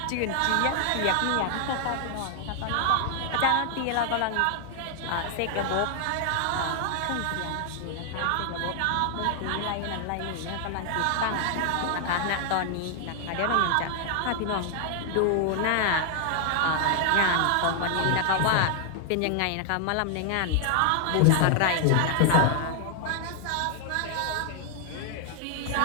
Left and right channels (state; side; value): different; both; correlation 0.00